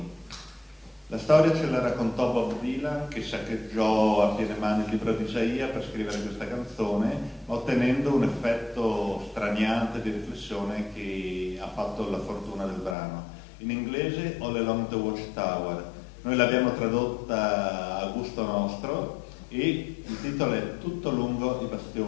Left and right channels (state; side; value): drops out; right; at 13.0 s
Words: La storia ce la raccontò Bob Dylan, che saccheggiò a piene mani il libro di Isaia per scrivere questa canzone, ottenendo un effetto straniante di riflessione che ha fatto la fortuna del brano. In inglese All Along the Watchtower. Noi l'abbiamo tradotta a gusto nostro e il titolo è Tutto lungo i